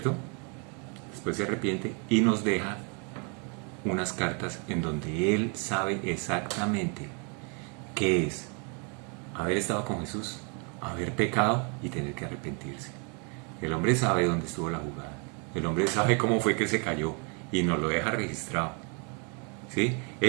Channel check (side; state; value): left; quieter; 36.2 dB